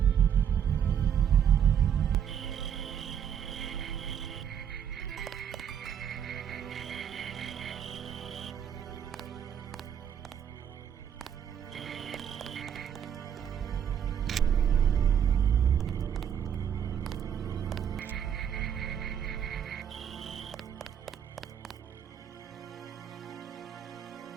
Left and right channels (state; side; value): quieter; left; 8.7 dB